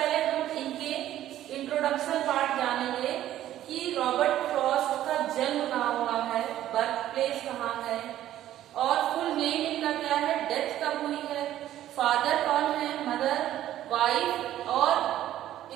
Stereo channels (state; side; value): quieter; left; 12.8 dB